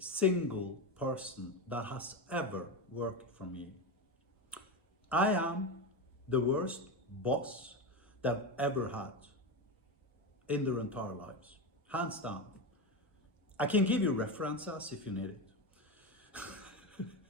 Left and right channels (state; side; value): normal; both; correlation 0.17